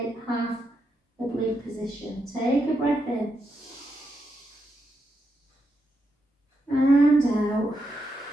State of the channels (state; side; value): normal; both; correlation 0.83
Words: half oblique position. Take a breath in and out